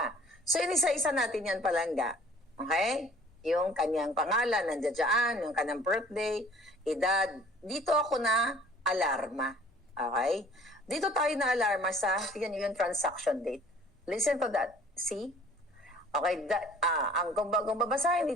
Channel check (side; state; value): both; normal; correlation 0.52